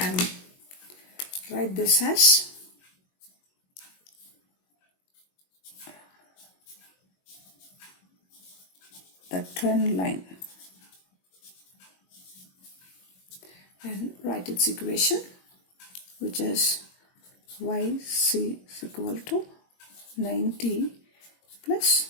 write this as the trend line, and write its equation, which is yc is equal to 90 plus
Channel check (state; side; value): late; right; 22 ms